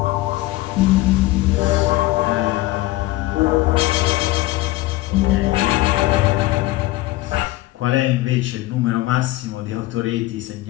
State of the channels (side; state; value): right; quieter; 18.2 dB